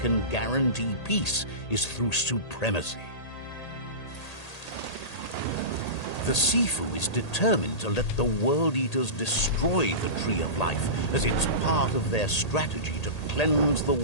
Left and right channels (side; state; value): right; late; 1.8 ms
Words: guarantee peace is through supremacy. The Sifu is determined to let the World Eaters destroy the Tree of Life, as it's part of their strategy to cleanse the